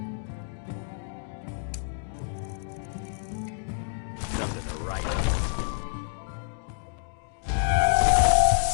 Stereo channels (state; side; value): silent; right; digital silence